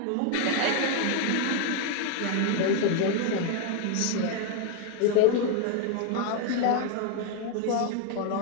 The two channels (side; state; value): both; different; correlation 0.01